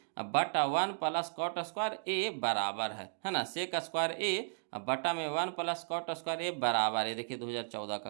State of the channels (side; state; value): left; silent; digital silence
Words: बटा 1 प्लस कॉट स्क्वायर ए बराबर है ना। सेक स्क्वायर ए बटा में 1 प्लस कॉट स्क्वायर ए बराबर है। देखिए 2014 का